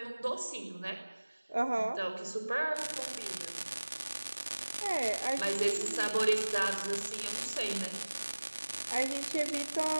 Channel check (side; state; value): both; inverted; correlation -1.00